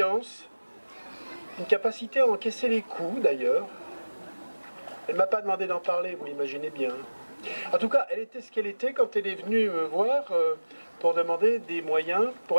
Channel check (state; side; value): inverted; both; correlation -1.00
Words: une capacité à encaisser les coups d'ailleurs. Elle ne m'a pas demandé d'en parler, vous l'imaginez bien. En tout cas, elle était ce qu'elle était quand elle est venue me voir pour demander des moyens